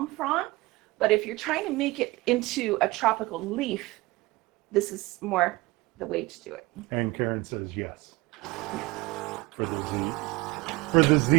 frond. But if you're trying to make it into a tropical leaf, this is more the way to do it. And Karen says yes. For the Z. For the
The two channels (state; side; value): quieter; left; 21.6 dB